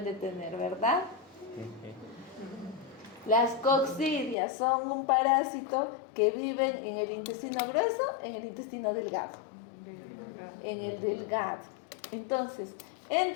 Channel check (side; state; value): right; drops out; at 4.4 s